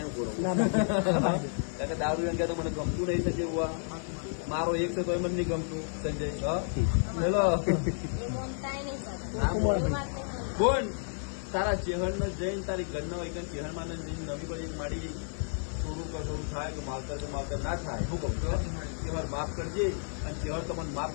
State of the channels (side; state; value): right; silent; digital silence